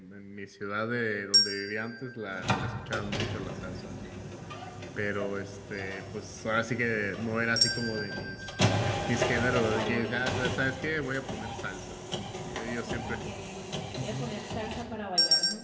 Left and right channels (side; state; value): both; identical; correlation 1.00